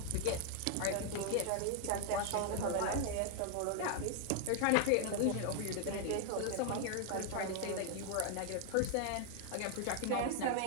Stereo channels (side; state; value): both; different; correlation 0.00